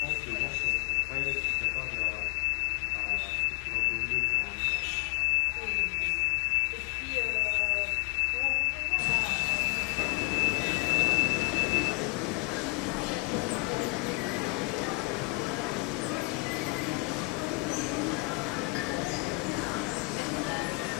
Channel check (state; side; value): quieter; right; 27.3 dB